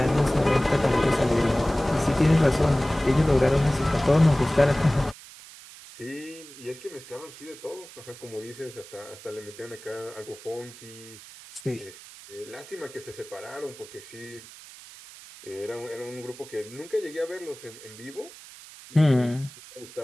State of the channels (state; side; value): noise; right; hiss, 18 dB below the sound